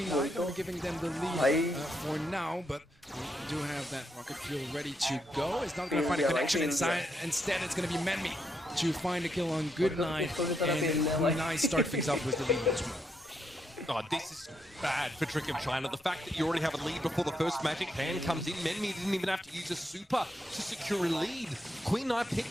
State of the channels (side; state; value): both; normal; correlation 0.79